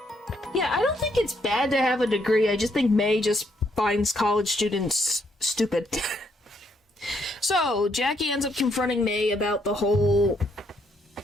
Yeah, I don't think it's bad to have a degree. I just think May just finds college students stupid. So, Jackie ends up confronting May about the whole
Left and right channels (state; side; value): normal; both; correlation 0.73